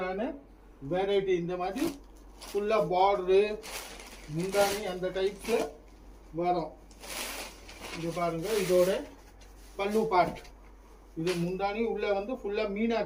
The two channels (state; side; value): identical; both; correlation 1.00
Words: வெரைட்டி. இந்த மாதிரி ஃபுல்லாக பார்டரு முந்தானி அந்த டைப்பில் வரும். இது பாருங்கள், இதோட பல்லு பார்ட். இது முந்தானி உள்ளே வந்து ஃபுல்லாக